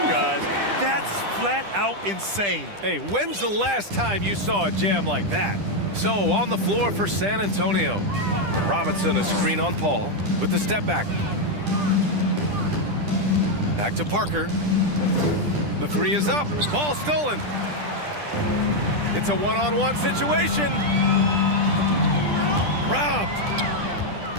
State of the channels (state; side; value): late; left; 10 ms